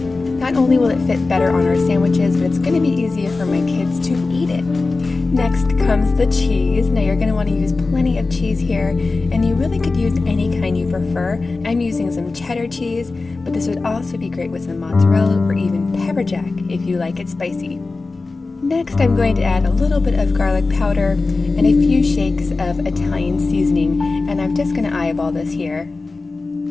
Not only will it fit better on our sandwiches, but it's going to be easier for my kids to eat it. Next comes the cheese. Now you're going to want to use plenty of cheese here, and you really could use any kind you prefer. I'm using some cheddar cheese, but this would also be great with some mozzarella or even pepper jack if you like it spicy. Next, I'm going to add a little bit of garlic powder and a few shakes of Italian seasoning, and I'm just going to eyeball this here.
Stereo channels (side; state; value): right; quieter; 3.7 dB